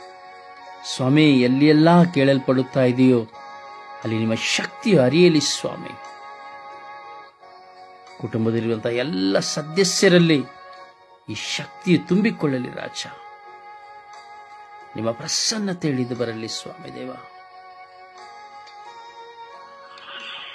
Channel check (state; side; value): identical; both; correlation 1.00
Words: ಸ್ವಾಮಿ ಎಲ್ಲಿಯೆಲ್ಲ ಕೇಳಲ್ಪಡುತ್ತಾ ಇದೆಯೋ ಅಲ್ಲಿ ನಿಮ್ಮ ಶಕ್ತಿಯು ಹರಿಯಲಿ ಸ್ವಾಮಿ. ಕುಟುಂಬದಲ್ಲಿರುವಂತಹ ಎಲ್ಲ ಸದಸ್ಯರಲ್ಲಿ ಈ ಶಕ್ತಿಯು ತುಂಬಿಕೊಳ್ಳಲಿ ರಾಜ. ನಿಮ್ಮ ಪ್ರಸನ್ನತೆ ಇಳಿದು ಬರಲಿ ಸ್ವಾಮಿ ದೇವ.